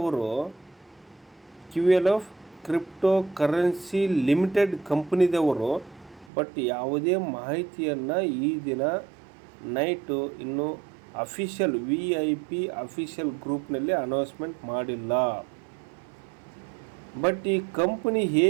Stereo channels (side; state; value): left; drops out; at 6.3 s